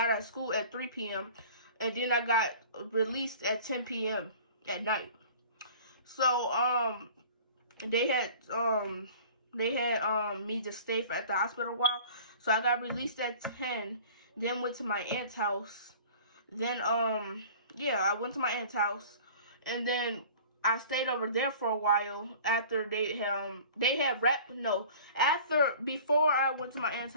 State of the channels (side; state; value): both; inverted; correlation -0.44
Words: out of school at 3 p.m. And then I got released at 10 p.m. at night. So, they had me to stay at the hospital a while. So I got released at 10, then went to my aunt's house. Then, I went to my aunt's house, and then I stayed over there for a while after before I went to my aunt's